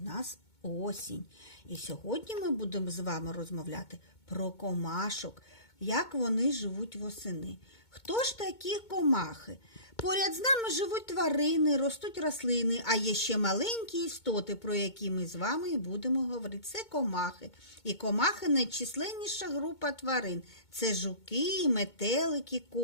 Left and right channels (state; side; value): late; right; 2.2 ms